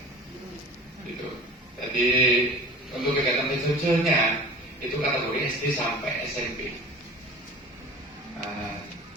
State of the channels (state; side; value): normal; both; correlation 0.41